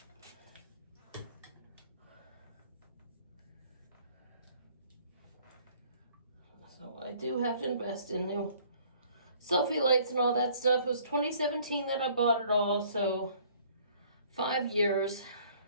So I do have to invest in new selfie lights and all that stuff. It was 2017 that I bought it all, so 5 years.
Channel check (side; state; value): both; inverted; correlation -0.57